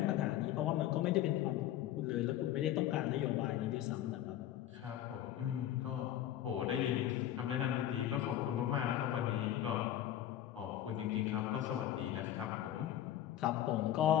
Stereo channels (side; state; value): right; quieter; 12.1 dB